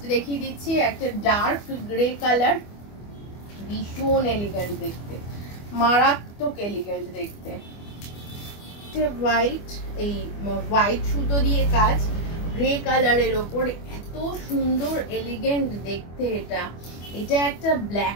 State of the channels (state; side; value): late; right; 25 ms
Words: দেখিয়ে দিচ্ছি একটা ডার্ক গ্রে কালার, ভীষণ এলিগেন্ট দেখতে, মারাত্মক এলিগেন্ট দেখতে, হোয়াইট, এই হোয়াইট সুতো দিয়ে কাজ, গ্রে কালারের ওপর, এত সুন্দর এলিগেন্ট দেখতে। এটা একটা